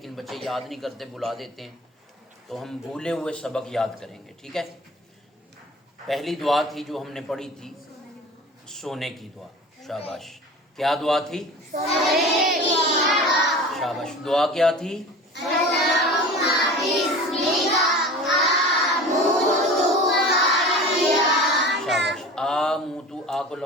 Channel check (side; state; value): both; normal; correlation 0.37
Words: بچے یاد نہیں کرتے، بلا دیتے ہیں، تو ہم بھولے ہوئے سبق یاد کریں گے، ٹھیک ہے؟ پہلی دعا تھی جو ہم نے پڑھی تھی، سونے کی دعا۔ شاباش۔ کیا دعا تھی؟ شاباش۔ دعا کیا تھی؟ شاباش۔ آموتو، آ کو